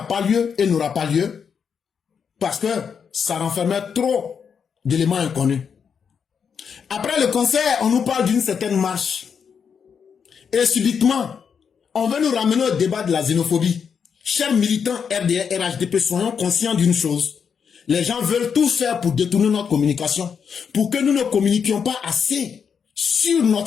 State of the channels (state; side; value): quieter; right; 6.8 dB